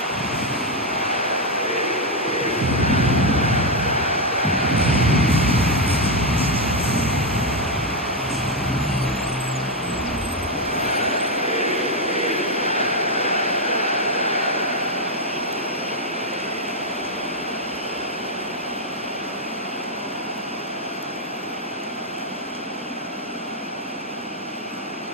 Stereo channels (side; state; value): both; normal; correlation 0.04